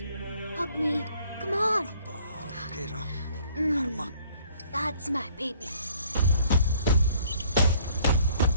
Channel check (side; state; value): both; inverted; correlation -0.59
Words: Hug me. Come on. Okay, రా. కర్మ. That's my baby.